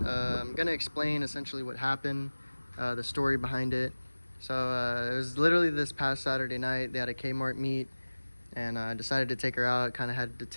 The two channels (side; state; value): both; inverted; correlation -1.00